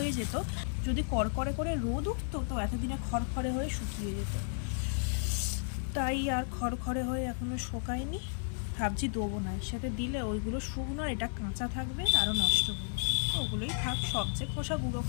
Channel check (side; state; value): right; silent; digital silence